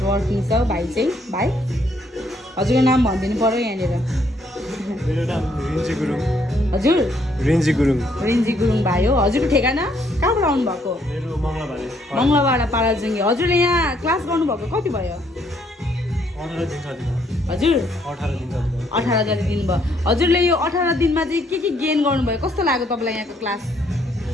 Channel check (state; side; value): normal; both; correlation 0.69